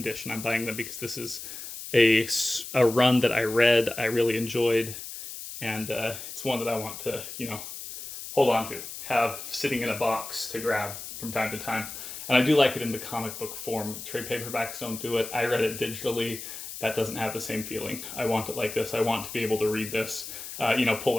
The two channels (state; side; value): noise; left; hiss, 10 dB below the sound